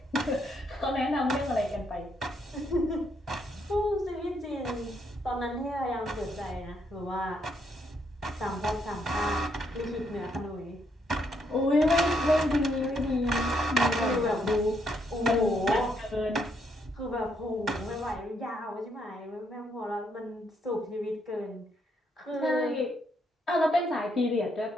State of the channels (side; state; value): both; normal; correlation 0.74